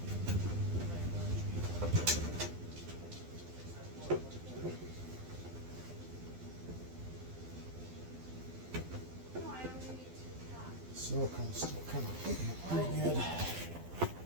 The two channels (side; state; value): left; late; 12 ms